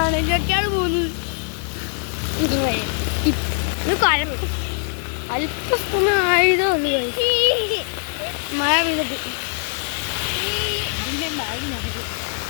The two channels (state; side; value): silent; right; 58 dB below the other